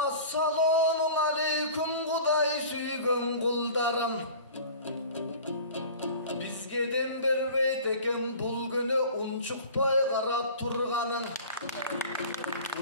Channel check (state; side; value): inverted; both; correlation -0.41